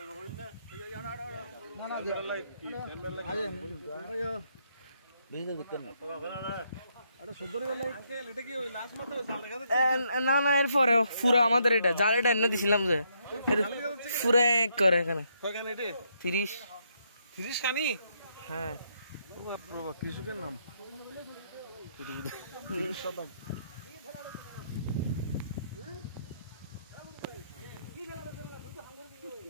না না এরপরে পুরো আমাদের এটা জাল এটা এনে দিছিলাম যে পুরো এক করে এখানে 30 কানি হ্যাঁ কৃষকের নাম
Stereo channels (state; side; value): inverted; both; correlation -0.75